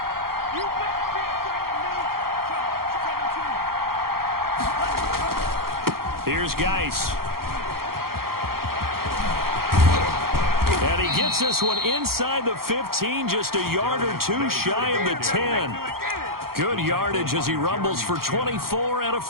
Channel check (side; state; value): left; late; 0.93 ms